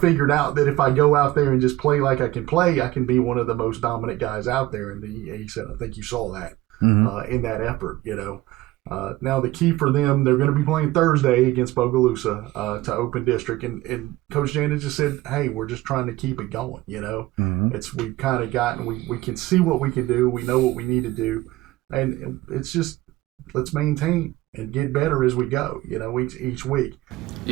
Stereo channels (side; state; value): left; quieter; 17.6 dB